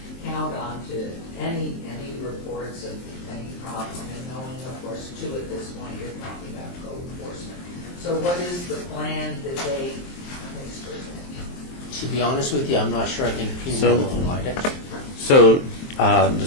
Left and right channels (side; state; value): right; late; 23 ms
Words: count on to any reports of any problem, and knowing, of course, too, at this point, you're talking about code enforcement. So what is the plan that they present? To be honest with you, I'm not sure. I think Pima So- will provide it. So,